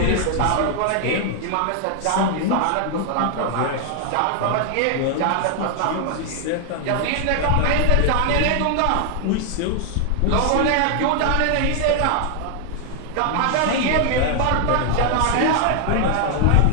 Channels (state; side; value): different; both; correlation 0.00